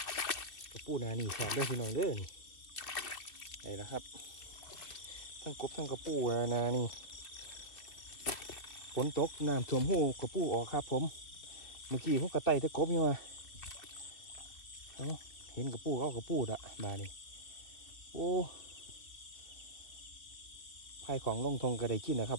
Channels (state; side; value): late; right; 2.5 ms